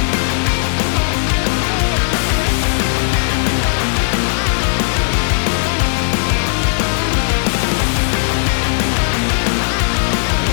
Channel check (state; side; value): silent; right; digital silence